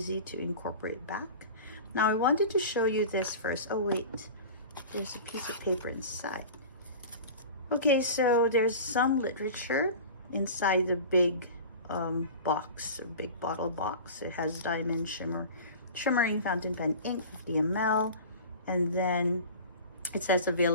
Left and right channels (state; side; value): inverted; both; correlation -0.36